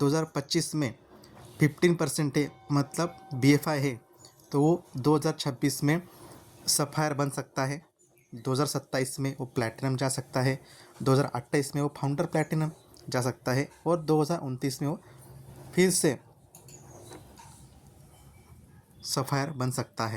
में 15% है मतलब BFI है, तो वो 2026 में सफ़ायर बन सकता है, 2027 में वो प्लैटिनम जा सकता है, 2028 में वो फाउंडर प्लैटिनम जा सकता है और 2029 में वो फिर से सफ़ायर बन सकता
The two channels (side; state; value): both; identical; correlation 1.00